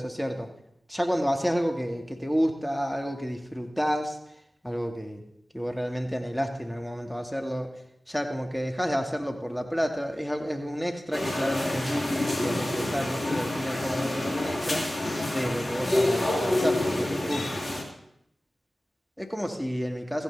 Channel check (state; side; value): normal; both; correlation 0.97